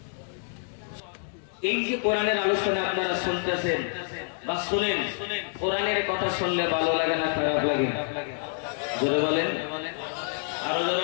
এই যে কোরআনের আলোচনা আপনারা শুনতেছেন বা শুনেন, কোরআনের কথা শুনলে ভালো লাগে না খারাপ লাগে? জোরে বলেন, আরো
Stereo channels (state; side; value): silent; right; 60 dB below the other